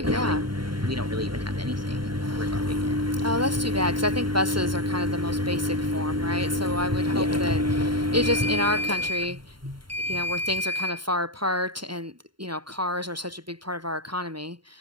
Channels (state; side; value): late; left; 0.73 ms